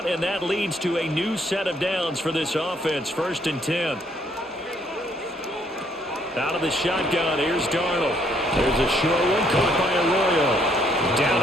and that leads to a new set of downs for this offense. 1st and 10. Out of the shotgun, here's Darnold. There's a short one caught by Arroyo. Down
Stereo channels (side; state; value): both; normal; correlation 0.68